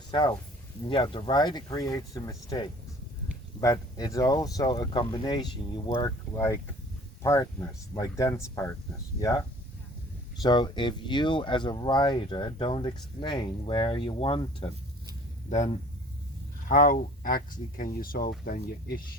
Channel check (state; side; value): normal; both; correlation 0.50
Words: yeah, the rider creates the mistakes, but it's also a combination. You work like partners, like dance partners, yeah? So if you as a rider don't explain where you want it, then how actually can you solve then your